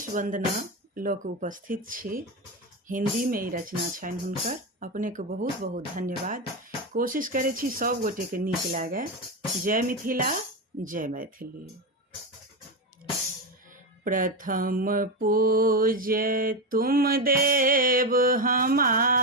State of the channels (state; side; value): normal; both; correlation 0.13